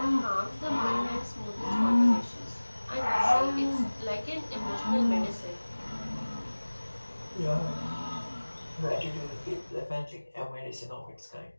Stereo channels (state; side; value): inverted; both; correlation -1.00